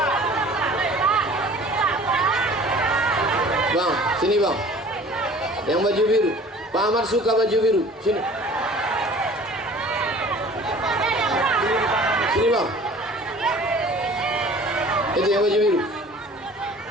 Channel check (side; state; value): both; normal; correlation 0.47